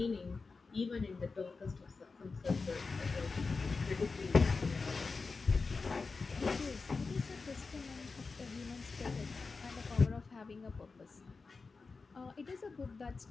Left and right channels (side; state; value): right; quieter; 4.3 dB